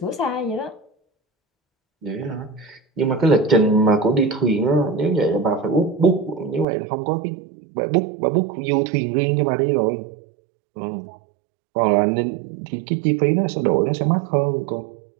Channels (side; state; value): left; drops out; at 6.7 s